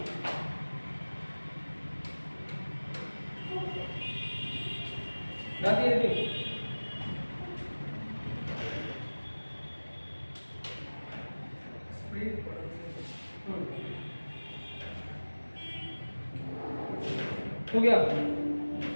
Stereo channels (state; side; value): inverted; both; correlation -1.00